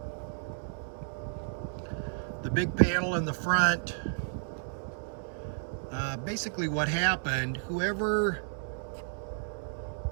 The big panel in the front, basically what happened, whoever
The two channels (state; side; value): silent; left; digital silence